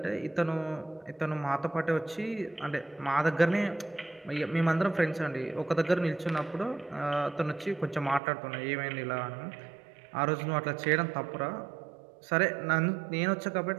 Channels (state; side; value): drops out; left; at 8.2 s